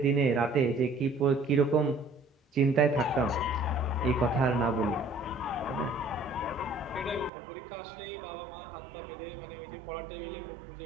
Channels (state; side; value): drops out; left; at 7.3 s